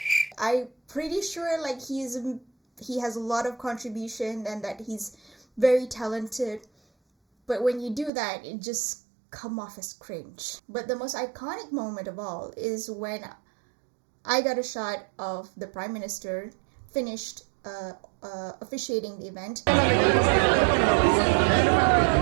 I'm pretty sure like he has a lot of contribution and that he's very talented. But when you do that, it just come off as cringe. But the most iconic moment of all is when I got a shot of the Prime Minister finished officiating the event.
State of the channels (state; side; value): drops out; left; at 8.1 s